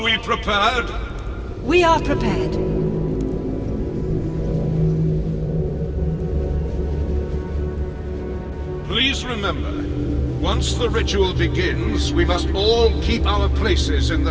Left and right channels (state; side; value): identical; both; correlation 1.00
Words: we prepared? We are prepared. Please remember, once the ritual begins, we must all keep our places in